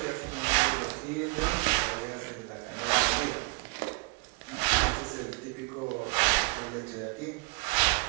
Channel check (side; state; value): left; quieter; 29.1 dB